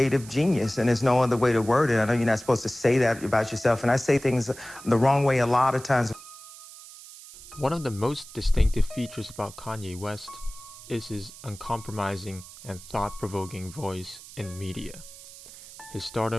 genius, and there's no other way to word it. I know you're not supposed to say that about yourself, and I say things the wrong way a lot of times. One of the most distinctive features about Kanye West is his uncompromising and thought-provoking voice in media. His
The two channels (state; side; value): noise; right; hiss, 17 dB below the sound